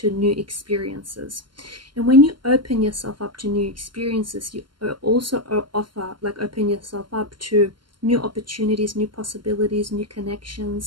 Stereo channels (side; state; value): left; late; 0.72 ms